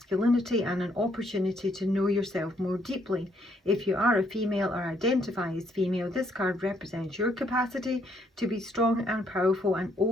and an opportunity to know yourself more deeply. If you are a female or identify as female, this card represents your capacity to be strong and powerful and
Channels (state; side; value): normal; both; correlation 0.70